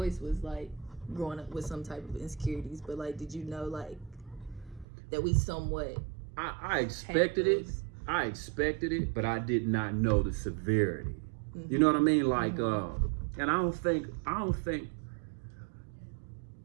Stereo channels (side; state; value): left; drops out; at 4.9 s